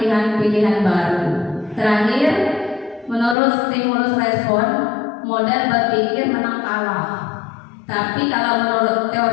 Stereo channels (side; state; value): right; drops out; at 3.4 s